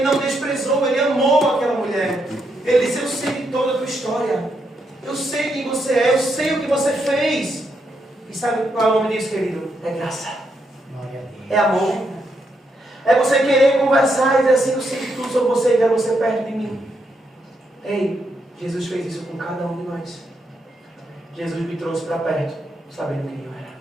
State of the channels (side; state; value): both; normal; correlation 0.79